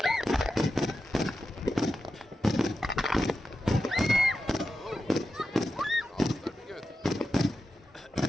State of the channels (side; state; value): both; normal; correlation 0.90